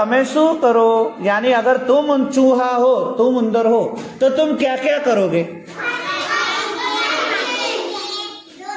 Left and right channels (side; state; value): both; identical; correlation 1.00